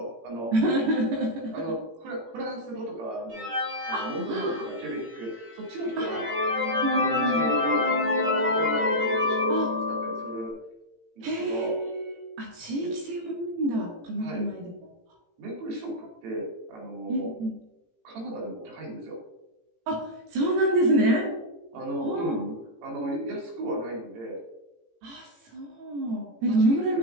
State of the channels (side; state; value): left; late; 18 ms